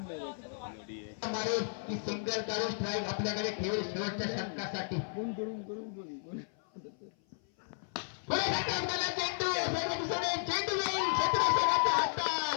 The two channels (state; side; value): silent; right; 55 dB below the other